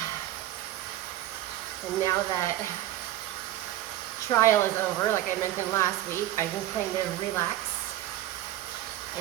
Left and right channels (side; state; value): left; quieter; 13.9 dB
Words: And now that trial is over, like I mentioned last week, I can kind of relax